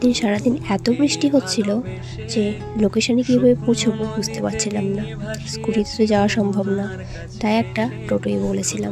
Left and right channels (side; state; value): both; identical; correlation 1.00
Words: সারাদিন এত বৃষ্টি হচ্ছিল যে লোকেশনে কীভাবে পৌঁছবো বুঝতে পারছিলাম না। স্কুটিতে তো যাওয়া সম্ভব না, তাই একটা টোটোই